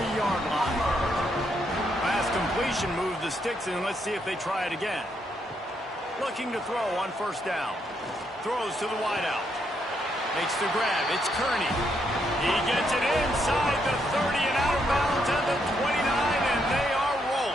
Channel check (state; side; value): normal; both; correlation 0.76